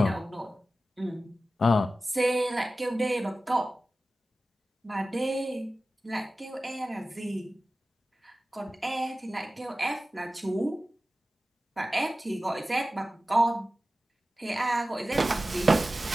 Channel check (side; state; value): both; normal; correlation 0.95